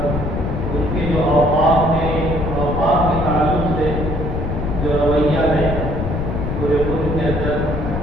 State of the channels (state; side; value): noise; left; rumble, 3 dB below the sound